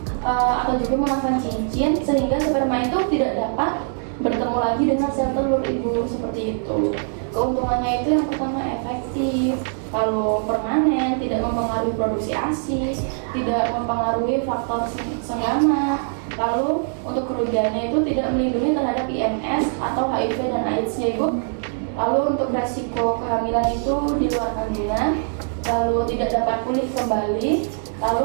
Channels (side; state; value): left; silent; 64 dB below the other